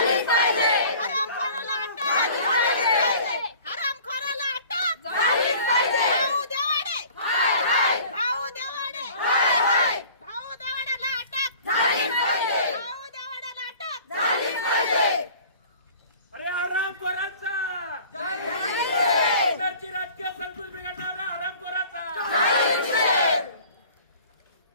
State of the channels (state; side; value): inverted; both; correlation -0.47